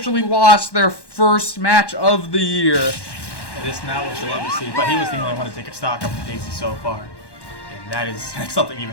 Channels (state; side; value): late; right; 1.1 ms